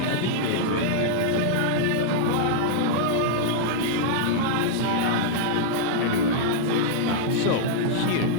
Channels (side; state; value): both; different; correlation -0.01